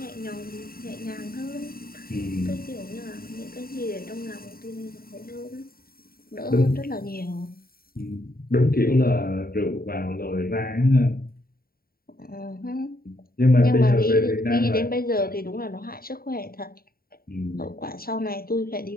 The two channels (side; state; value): right; late; 0.43 ms